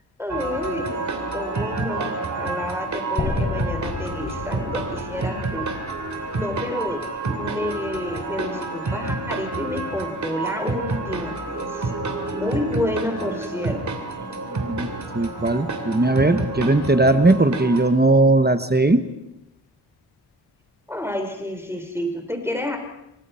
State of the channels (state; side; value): normal; both; correlation 0.49